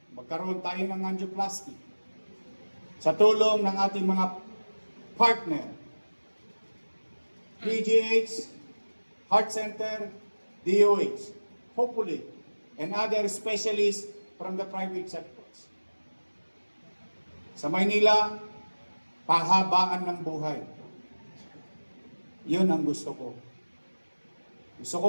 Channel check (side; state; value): both; inverted; correlation -1.00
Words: magkaroon tayo ng angioplasty sa tulong ng ating mga partner PGH, Heart Center, DOH, hopefully, and other specialists from the private sectors. Sa Maynila, pahabaan ng buhay. Yun ang gusto ko. Gusto ko